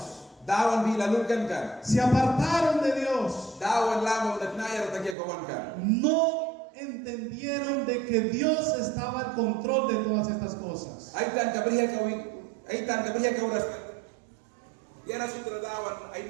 se apartaron de Dios, no entendieron de que Dios estaba al control de todas estas cosas.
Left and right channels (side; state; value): left; drops out; at 5.2 s